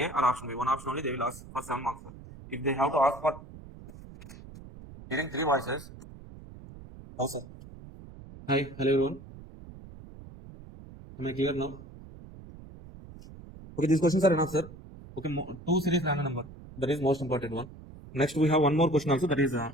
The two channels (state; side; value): noise; right; rumble, 17 dB below the sound